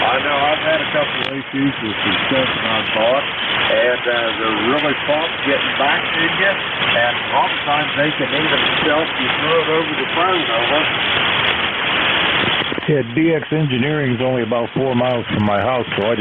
I know I've had a couple of issues with some stuff that I bought, and they're really prompt getting back to you, and a lot of times they can even help you throw it over the phone, over. Yeah, DX Engineering is only about 4 miles from my house, so I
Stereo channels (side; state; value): both; identical; correlation 1.00